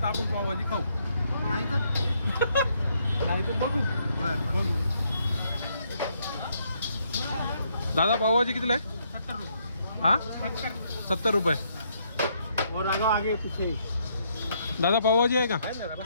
तर आपण पावभाजी खाऊ, नाही तर बघू. बघू. दादा पावभाजी कितीला आहे? 70 रुपये. हा 70 रुपये. और आगे पीछे दादा पावभाजी आहे का?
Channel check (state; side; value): inverted; both; correlation -0.73